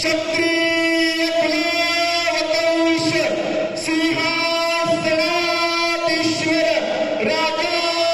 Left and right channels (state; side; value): identical; both; correlation 1.00